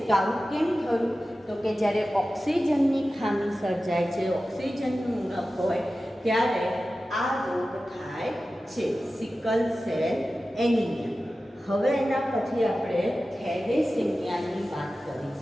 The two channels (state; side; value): normal; both; correlation 0.94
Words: તો આવું કેમ થયું? તો કે જ્યારે ઓક્સિજનની ખામી સર્જાય છે, ઓક્સિજનનું ઉણપ હોય ત્યારે આ રોગ થાય છે, સિકલ સેલ એનિમિયા. હવે એના પછી આપણે થેલેસેમિયાની વાત